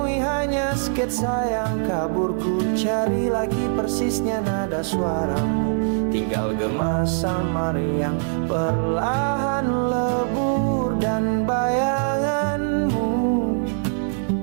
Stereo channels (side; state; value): left; silent; digital silence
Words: hanya sketsa yang kabur. Ku cari lagi persisnya nada suaramu, tinggal gema samar yang perlahan lebur. Dan bayanganmu